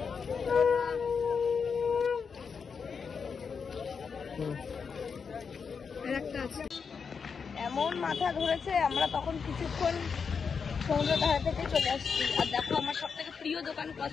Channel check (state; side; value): quieter; right; 5.8 dB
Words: এমন মাথা ধরেছে, আমরা তখন কিছুক্ষণ সমুদ্র ধারে থেকে চলে আসছি। আর দেখো আমার সব থেকে প্রিয় দোকান